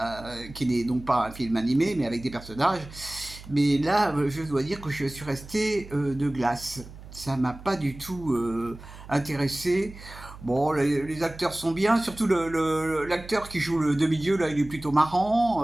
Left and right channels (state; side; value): noise; right; hum, 16 dB below the sound